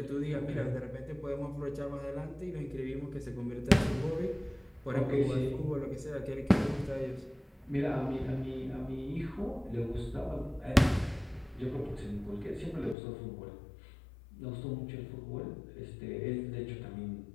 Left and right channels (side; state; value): right; drops out; at 13.0 s